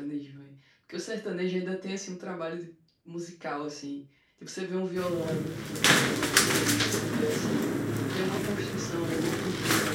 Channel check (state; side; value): identical; both; correlation 1.00